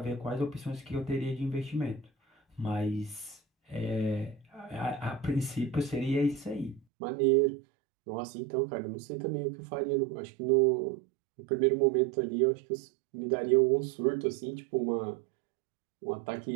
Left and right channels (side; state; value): left; drops out; at 6.8 s